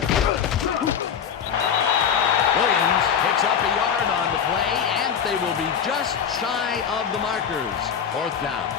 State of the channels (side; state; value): right; quieter; 7.7 dB